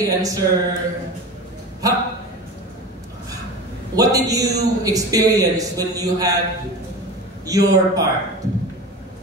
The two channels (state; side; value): normal; both; correlation 0.31